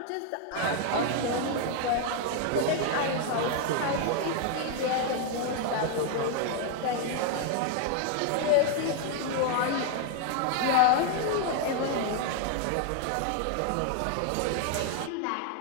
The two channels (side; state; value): both; different; correlation 0.00